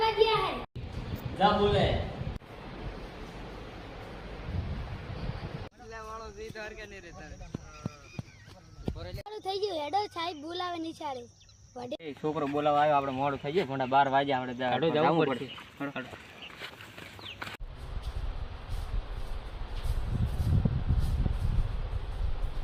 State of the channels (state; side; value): identical; both; correlation 1.00